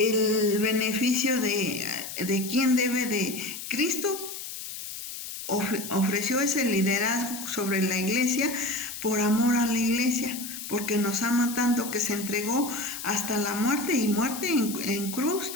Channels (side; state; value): left; noise; hiss, 9 dB below the sound